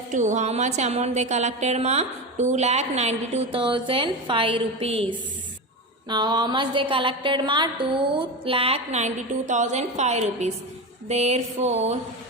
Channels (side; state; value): both; normal; correlation 0.21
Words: 2. How much amount they collected ma? 2,92,005 rupees. Now how much they collected ma? 2,92,005 rupees. Therefore